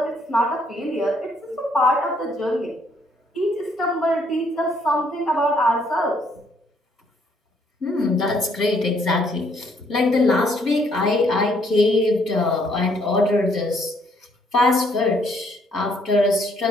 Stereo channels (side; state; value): both; normal; correlation 0.68